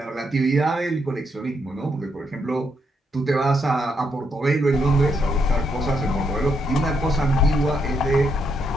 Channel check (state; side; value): normal; both; correlation 0.77